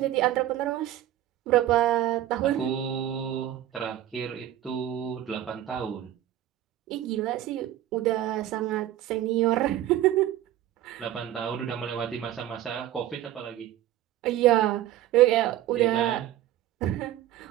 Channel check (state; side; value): quieter; left; 12.9 dB